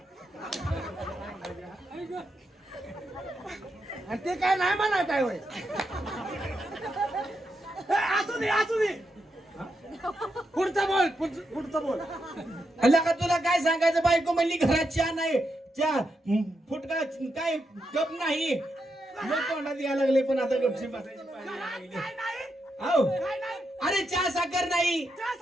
आणि ते काय नाही म्हणा काय होय. असू दे. पुढचं बोल. अल्ला का तुला काय सांगायचं? बायको म्हणली घरात चहा नाही, चहा फुटका काय कप नाही. मग तोंडात यायला लागले, पण आता गपशी बसायची पाळी लागली. काय नाही? हो. काय नाही? अरे चहा साखर नाही, चहा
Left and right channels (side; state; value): both; normal; correlation 0.84